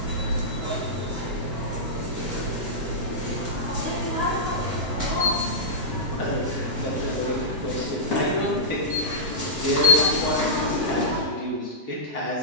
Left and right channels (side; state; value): left; late; 7.6 ms